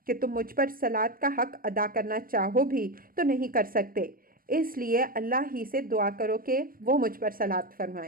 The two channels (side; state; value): left; late; 0.41 ms